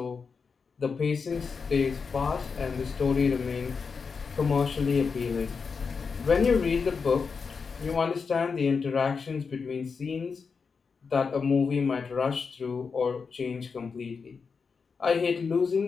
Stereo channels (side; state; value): right; quieter; 5.3 dB